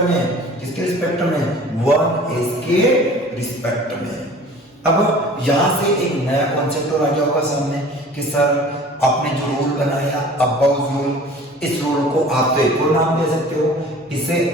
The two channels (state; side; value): normal; both; correlation 0.45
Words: में, 1s के रिस्पेक्ट में। अब यहां से एक नया कॉन्सेप्ट और आ गया होगा सामने कि सर आपने जो रूल बनाया अबाउट रूल, इस रूल को आप तो एक और नाम दे सकते हो, इसे